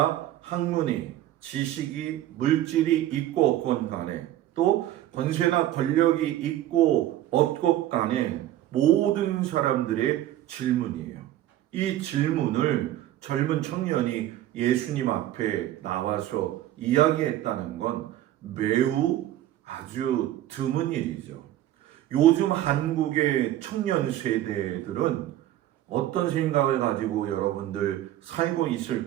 학문이, 지식이, 물질이 있고 없건 간에, 또 권세나 권력이 있고 없건 간에 모든 사람들의 질문이에요. 이 질문을 젊은 청년이 예수님 앞에 나와서 이야기했다는 건 매우 아주 드문 일이죠. 요즘 한국의 청년 세대들은 어떤 생각을 가지고 여러분들 살고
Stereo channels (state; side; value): quieter; left; 13.4 dB